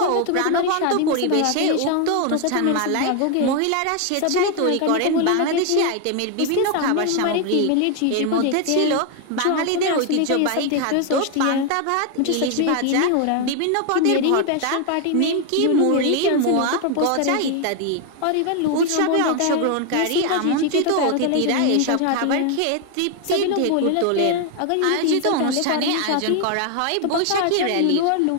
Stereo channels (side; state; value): both; different; correlation 0.01